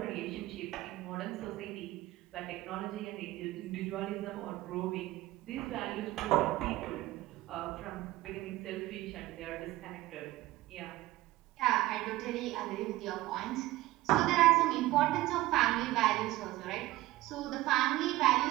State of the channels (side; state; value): left; quieter; 17.4 dB